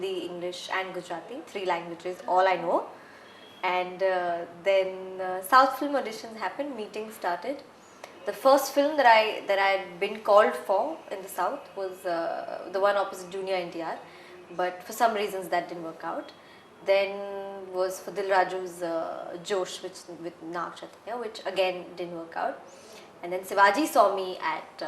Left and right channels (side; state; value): both; identical; correlation 1.00